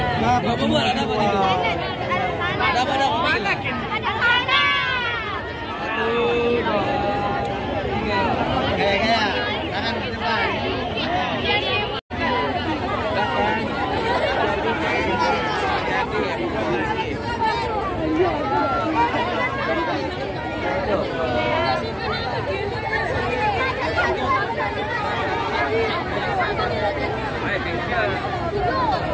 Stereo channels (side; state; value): both; identical; correlation 1.00